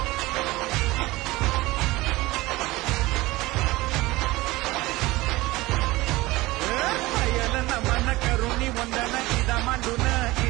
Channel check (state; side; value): quieter; left; 20.0 dB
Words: नमन करुणी वंदन इदा मांडून